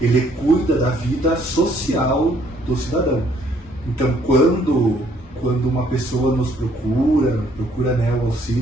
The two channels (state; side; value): normal; both; correlation 0.65